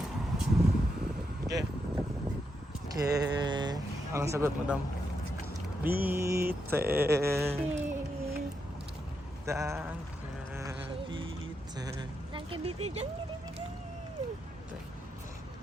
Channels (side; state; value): both; normal; correlation 0.83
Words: Okay. Okay. Anong sagot, madam? Bitte. Danke, bitte. Danke, bitte. Danke, bitte.